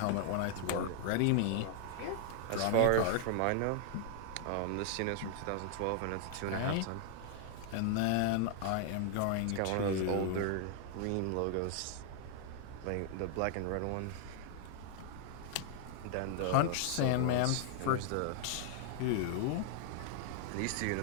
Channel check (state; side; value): different; both; correlation 0.00